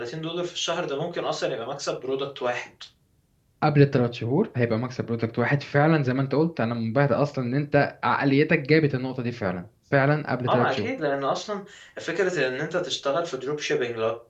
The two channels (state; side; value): identical; both; correlation 1.00